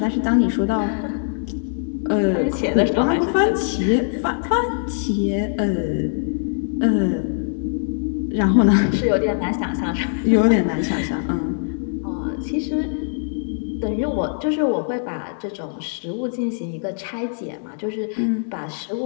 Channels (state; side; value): silent; right; digital silence